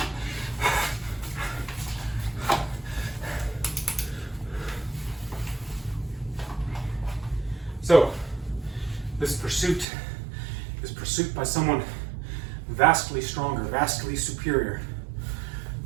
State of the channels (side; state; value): left; drops out; at 9.9 s